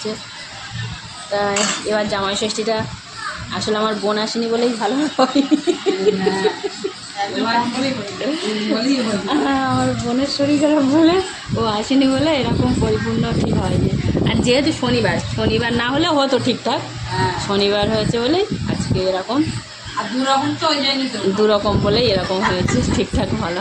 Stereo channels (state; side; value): identical; both; correlation 1.00